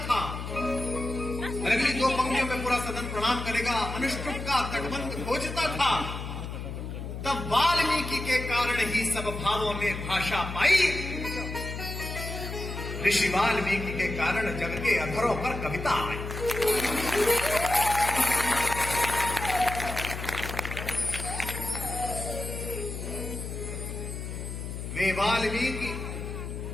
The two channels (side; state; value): left; noise; hum, 7 dB below the sound